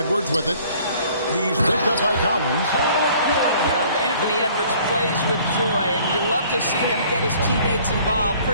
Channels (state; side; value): inverted; both; correlation -0.55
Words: with it. He's picked up by Collins. Anthony Edwards plays with joy, and you love to see him get his teammates involved.